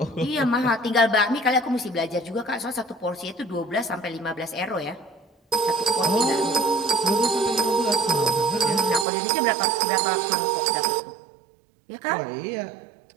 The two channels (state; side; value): drops out; left; at 9.1 s